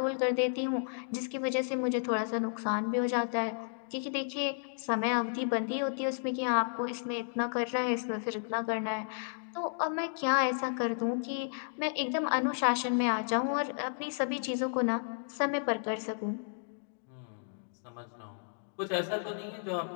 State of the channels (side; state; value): right; silent; digital silence